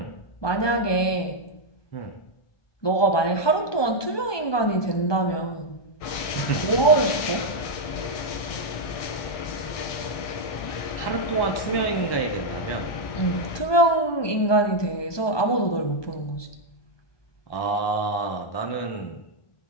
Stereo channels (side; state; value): right; late; 1.2 ms